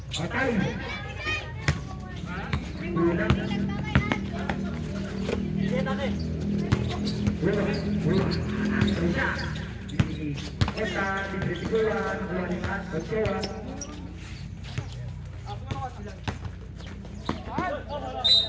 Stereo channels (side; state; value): both; identical; correlation 1.00